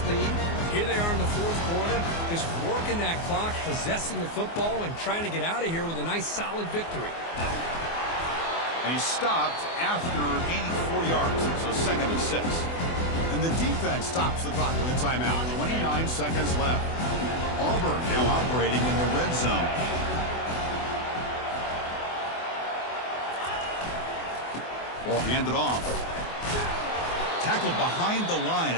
lead. Here they are in the fourth quarter, just working that clock, possessing the football, and trying to get out of here with a nice, solid victory. And he stopped after gaining 4 yards, so 2nd and 6. And the defense stops the clock with a timeout. 29 seconds left. Auburn now operating in the red zone. Ball handed off. Tackled behind the line.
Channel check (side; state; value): right; late; 24 ms